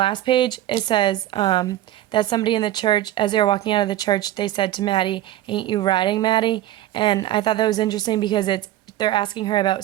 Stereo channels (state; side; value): quieter; left; 13.8 dB